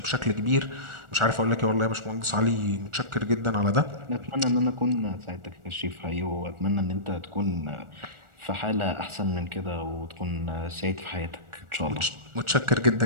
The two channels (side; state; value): left; late; 1.4 ms